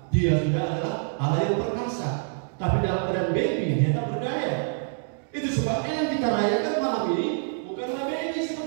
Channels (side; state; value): left; silent; digital silence